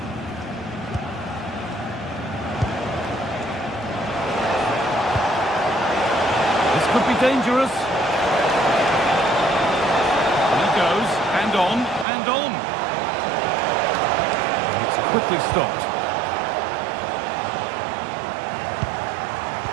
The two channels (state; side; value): drops out; left; at 12.1 s